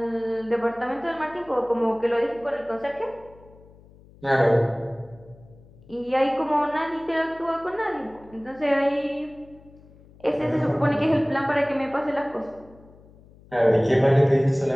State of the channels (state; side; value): noise; left; hum, 24 dB below the sound